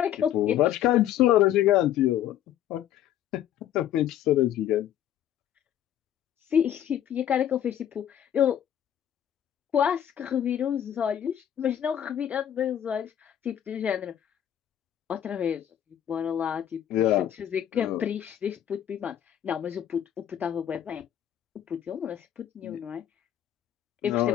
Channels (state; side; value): quieter; right; 10.7 dB